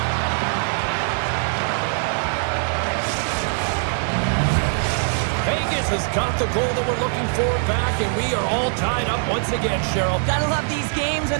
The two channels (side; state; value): left; silent; 64 dB below the other